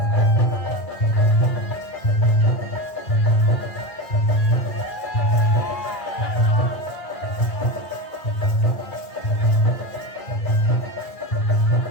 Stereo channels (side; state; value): right; late; 1.9 ms